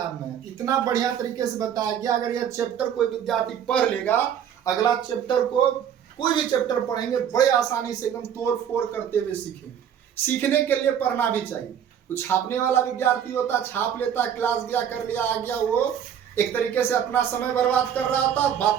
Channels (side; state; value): left; quieter; 9.0 dB